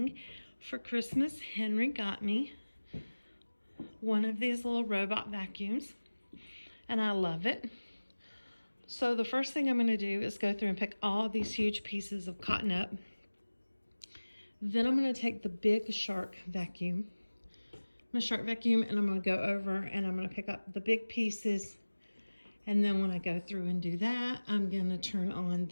for Christmas. Henry got me one of these little robot vacuums, and I love it. So the first thing I'm going to do is go through and pick all these huge pieces of cotton up. Then I'm going to take the big shark vacuum, and I'm going to go over and I'm going to pick up the big pieces. And then when I go through and do that, I'm going to turn on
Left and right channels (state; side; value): inverted; both; correlation -1.00